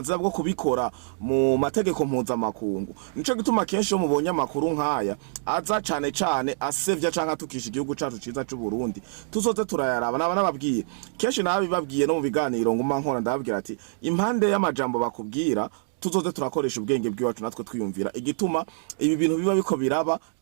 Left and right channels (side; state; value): left; silent; digital silence